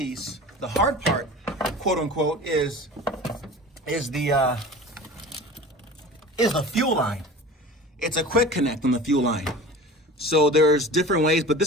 the hard part, quote unquote, is the fuel line. It's a quick connect on the fuel line. So there's different ways, but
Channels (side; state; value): both; normal; correlation 0.38